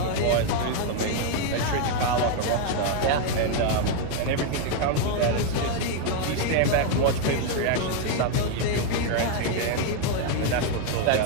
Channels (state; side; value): different; both; correlation 0.01